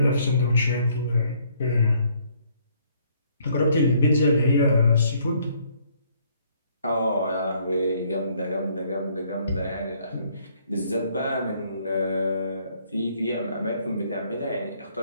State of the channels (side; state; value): both; inverted; correlation -0.65